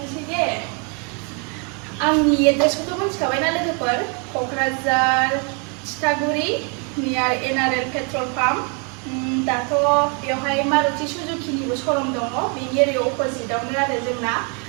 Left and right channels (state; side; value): quieter; left; 36.2 dB